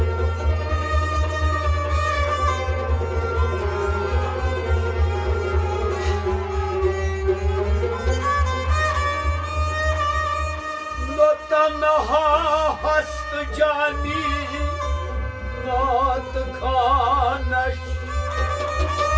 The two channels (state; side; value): identical; both; correlation 1.00